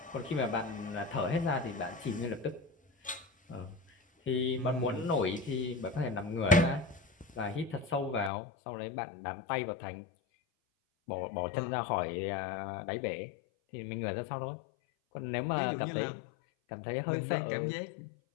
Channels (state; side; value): drops out; right; at 8.3 s